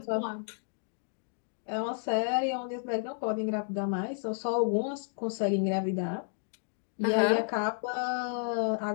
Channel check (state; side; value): silent; right; 57 dB below the other